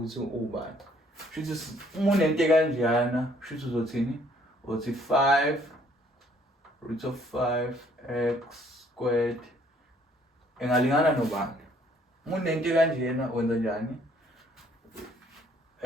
ukuthi ubani. Shuthi uma unento kanjena shuthi uzothini? Uthi 5 root of 5x squared engalingana nobani. Uma unento kanjena wenza njani?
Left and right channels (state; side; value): normal; both; correlation 0.63